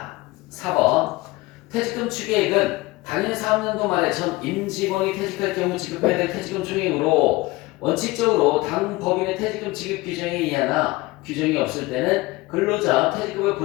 4번 퇴직금 추계액은 당일 사업연도 말에 전 임직원이 퇴직할 경우 지급해야 될 퇴직금 총액으로 원칙적으로 당 법인의 퇴직금 지급 규정에 의하나 규정이 없을 때는 근로자 퇴직급여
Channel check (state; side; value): quieter; right; 20.8 dB